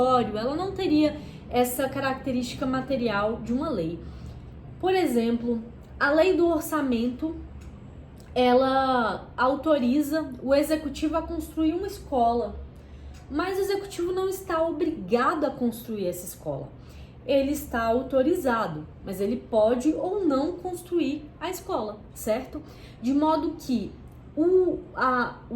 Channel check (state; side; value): identical; both; correlation 1.00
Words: ela não teria essa característica material de uma lei. Por exemplo, a lei do orçamento, ela autoriza o executivo a construir uma escola, mas o executivo não está obrigado a construir essa escola. Ele está autorizado, mas ele pode ou não construir a escola, certo? De modo que o